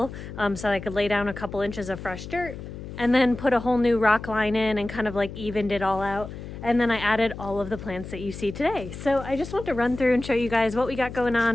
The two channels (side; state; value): left; noise; hum, 11 dB below the sound